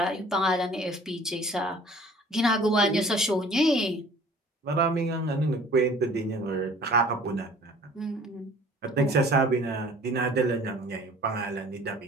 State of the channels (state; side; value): normal; both; correlation 0.50